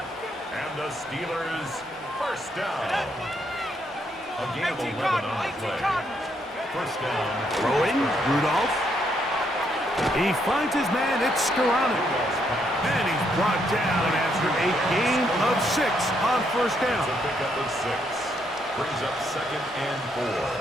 And the Steelers, 1st down. A gain of 11 on the play. 1st down. Throwing, Rudolph. He finds his man, it's Skoranek. And he's brought down after a gain of 6 on 1st down. It's a pickup of 6. Brings up 2nd and 4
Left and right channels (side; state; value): both; normal; correlation 0.74